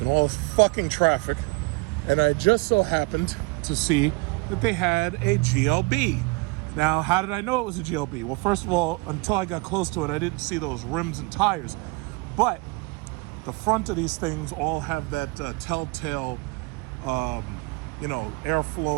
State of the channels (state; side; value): quieter; left; 26.4 dB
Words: in all this fucking traffic, and I just so happened to see that they had a GLB. Now, how did I know it was a GLB? Well, first of all, until I got close to it, I didn't see those rims and tires. But the front of these things all have that telltale,